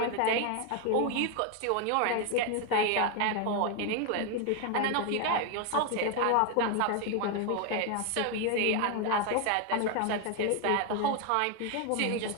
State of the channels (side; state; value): both; different; correlation 0.01